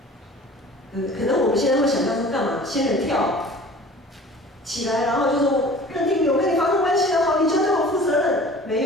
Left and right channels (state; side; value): normal; both; correlation 0.44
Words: 可能我们现在会想象说干嘛？仙人跳起来，然后就说认定我跟你发生关系的好，你就要对我负责任。没